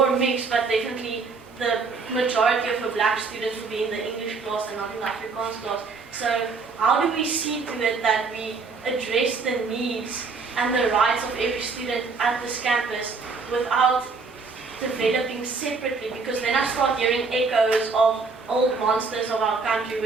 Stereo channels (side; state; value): left; quieter; 4.5 dB